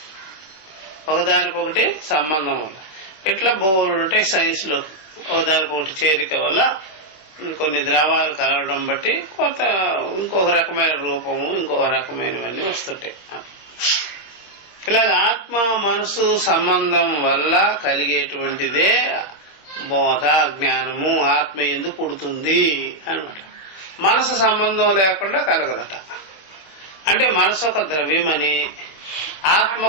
ఒకదానికొకటి సంబంధం వల్ల. ఇట్లా బోర్డు ఉంటాయి సైన్స్ లో, ఒకదానికొకటి చేరిక వల్ల కొన్ని ద్రవాలు కలవడం బట్టి కొంత ఇంకొక రకమైన రూపము ఇంకొక రకమైనవన్నీ వస్తుంటాయి. ఇలాగ ఆత్మ మనసు సంబంధం వల్ల కలిగేటువంటిదే బోధ జ్ఞానము. ఆత్మ ఎందుకు పుడుతుంది అనమాట. మనసు సంబంధం లేకుండా కలగదట. అంటే మనసు ఒక ద్రవ్యమని, ఆత్మ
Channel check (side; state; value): right; late; 26 ms